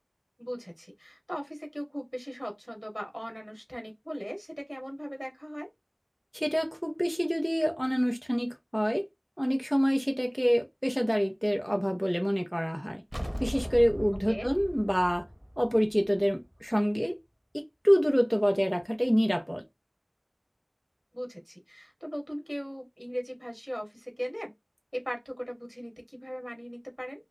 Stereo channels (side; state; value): both; identical; correlation 1.00